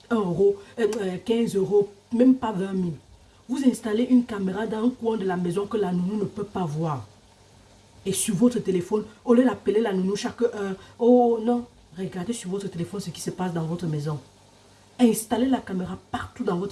1 euro, 15 euros, même pas 20 000. Vous installez une caméra dans un coin de la maison que la nounou ne peut pas voir. Et sur votre téléphone, au lieu d'appeler la nounou chaque heure, oh non, regardez sur votre téléphone ce qui se passe dans votre maison. Installez la caméra partout dans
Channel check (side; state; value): both; identical; correlation 1.00